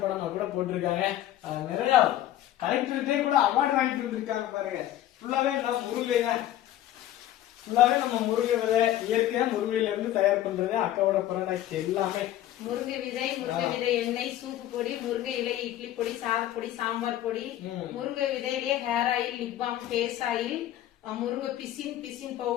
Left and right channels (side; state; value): right; quieter; 13.0 dB